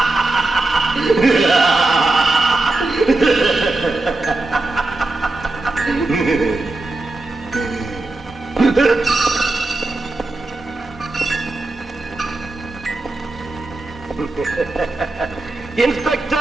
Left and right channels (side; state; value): left; quieter; 3.0 dB